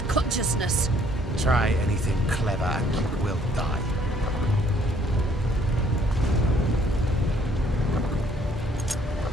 consciousness. Try anything clever and you will die.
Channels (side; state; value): both; normal; correlation 0.63